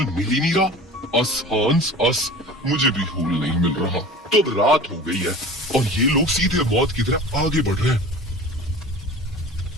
मिल ही नहीं रहा। अस हांस अस, मुझे भी होल नहीं मिल रहा। तो अब रात हो गई है और ये लोग सीधे मौत की तरफ आगे बढ़ रहे हैं।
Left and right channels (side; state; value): both; normal; correlation 0.39